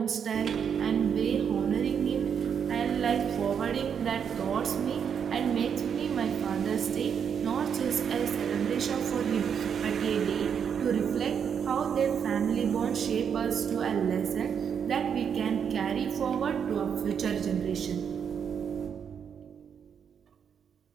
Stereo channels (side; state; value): left; quieter; 7.5 dB